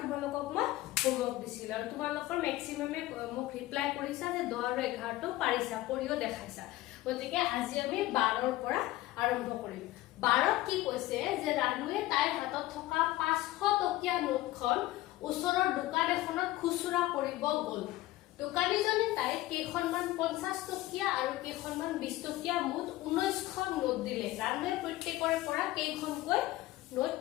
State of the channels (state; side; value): quieter; right; 16.8 dB